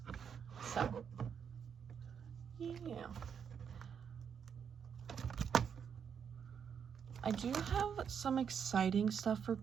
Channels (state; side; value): quieter; left; 7.3 dB